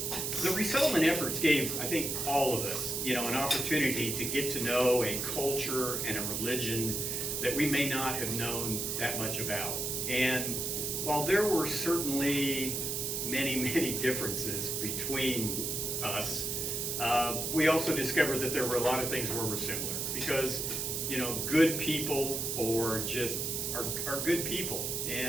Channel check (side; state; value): right; noise; hiss, 1 dB below the sound